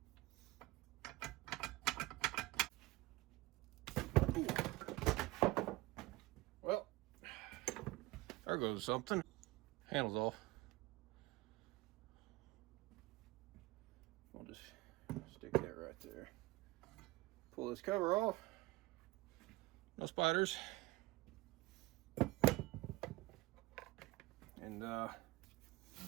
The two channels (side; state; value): left; quieter; 20.4 dB